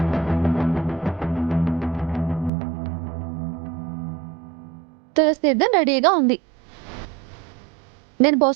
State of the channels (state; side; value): drops out; left; at 2.5 s